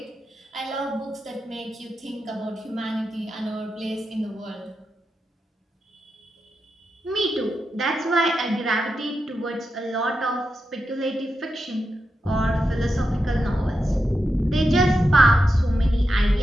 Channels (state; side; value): normal; both; correlation 0.87